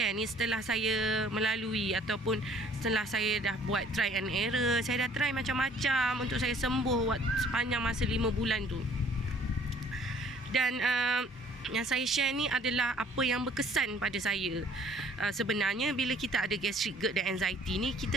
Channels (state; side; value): normal; both; correlation 0.57